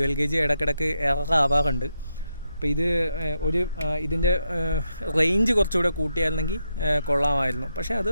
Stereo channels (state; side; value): inverted; both; correlation -0.83